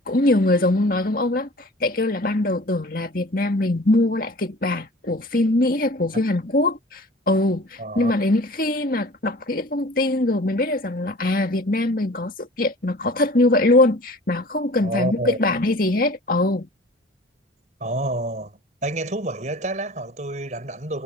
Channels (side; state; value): both; normal; correlation 0.44